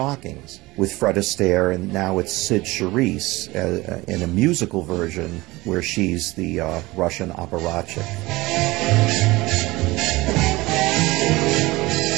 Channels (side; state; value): left; quieter; 20.6 dB